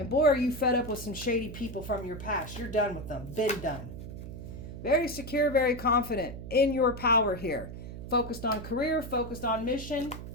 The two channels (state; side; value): noise; right; hum, 10 dB below the sound